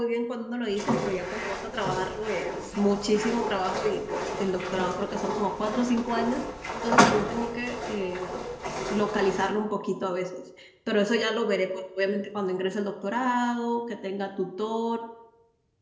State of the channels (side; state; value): both; identical; correlation 1.00